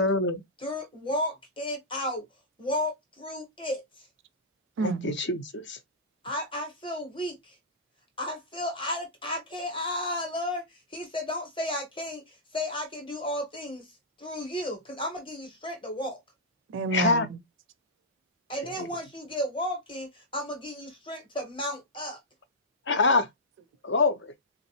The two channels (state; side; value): normal; both; correlation -0.14